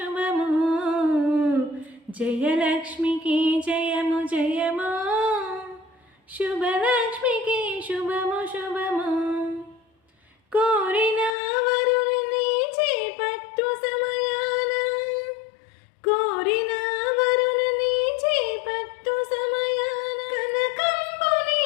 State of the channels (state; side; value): drops out; right; at 11.3 s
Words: జయలక్ష్మికి జయము జయము, శుభలక్ష్మికి శుభము శుభము. కోరిన వరుణ్ణి చేపట్టు సమయాన, కోరిన వరుణ్ణి చేపట్టు సమయాన, కనకంబుని